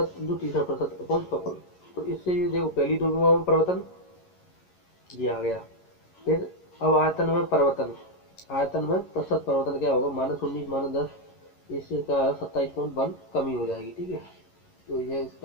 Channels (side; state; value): right; late; 11 ms